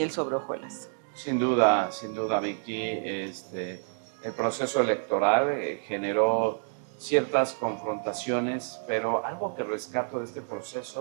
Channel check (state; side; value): silent; left; digital silence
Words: sobre hojuelas. Sin duda, Vicky, el proceso electoral generó ciertas confrontaciones, pero algo que rescato de este